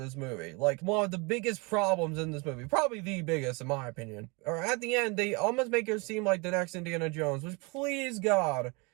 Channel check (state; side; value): quieter; left; 29.0 dB